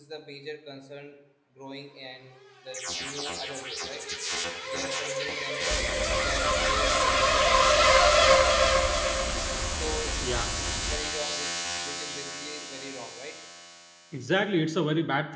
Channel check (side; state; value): both; identical; correlation 1.00